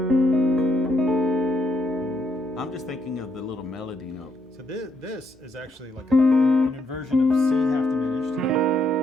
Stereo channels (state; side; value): normal; both; correlation 0.74